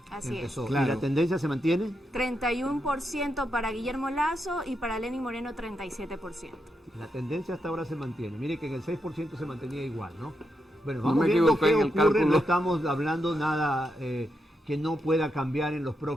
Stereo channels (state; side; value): normal; both; correlation 0.83